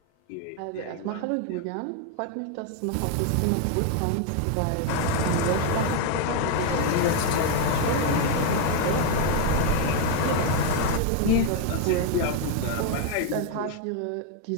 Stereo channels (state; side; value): different; both; correlation 0.01